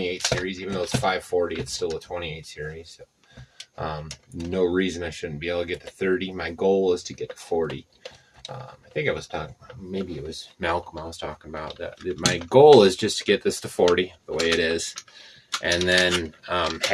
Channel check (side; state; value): both; identical; correlation 1.00